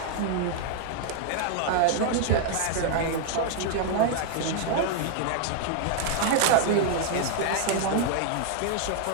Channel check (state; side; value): different; both; correlation 0.00